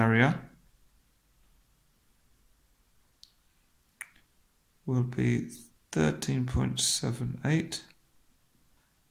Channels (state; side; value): identical; both; correlation 1.00